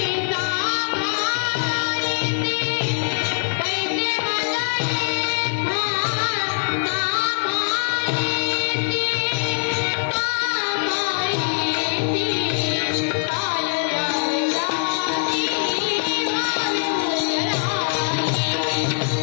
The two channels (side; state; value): right; silent; digital silence